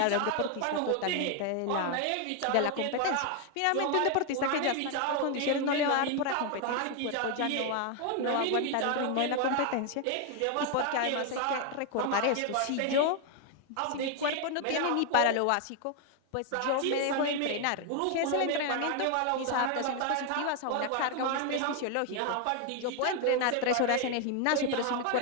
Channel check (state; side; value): different; both; correlation 0.01